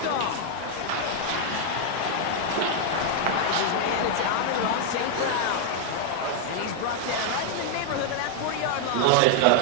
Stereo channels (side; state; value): both; different; correlation 0.00